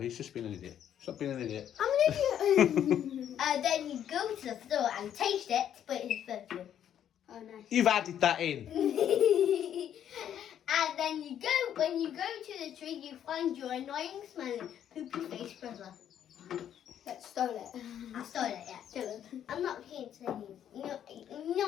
just being an idiot. Stop being an idiot. I'm an idiot. Then you go to the floor and taste it, but it's perfume. Oh, nice. You've added that in. And then when you go to the tree, you find your annoying smelling poopy face brother. That stole it. I stole it, yeah. Dylan. I'm not here to tell you. You know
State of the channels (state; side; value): quieter; right; 10.0 dB